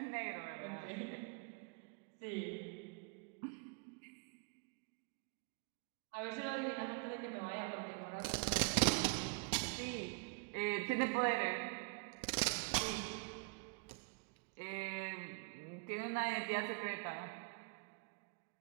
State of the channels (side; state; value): left; quieter; 31.6 dB